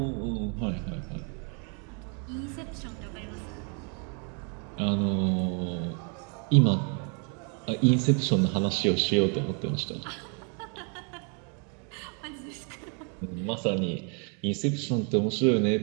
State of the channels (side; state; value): left; quieter; 37.8 dB